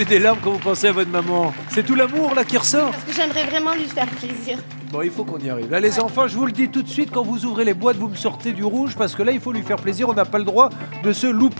des larmes quand vous pensez à votre maman? C'est tout l'amour là qui ressort. Parce que j'aimerais vraiment lui faire plaisir. Bon, il faut qu'on y arrive. Là, les enfants, je vous le dis tout de suite, quand vous ouvrez les boîtes, vous me sortez du rouge parce que là, il faut lui faire plaisir. On n'a pas le droit de se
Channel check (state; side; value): inverted; both; correlation -1.00